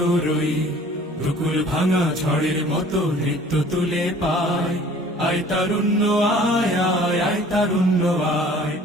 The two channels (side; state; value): both; normal; correlation 0.50